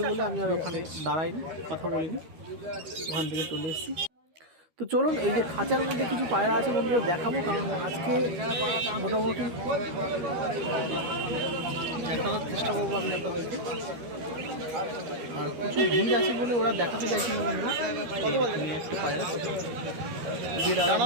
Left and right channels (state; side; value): late; left; 13 ms